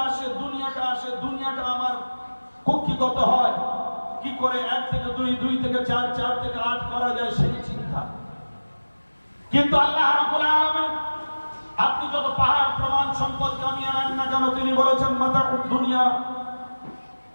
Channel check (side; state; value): both; inverted; correlation -1.00